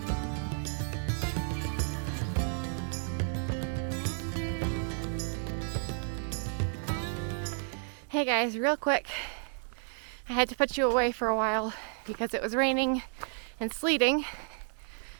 Hey guys, real quick. I had to put you away for a while because it was raining and sleeting.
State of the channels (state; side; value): silent; left; 56 dB below the other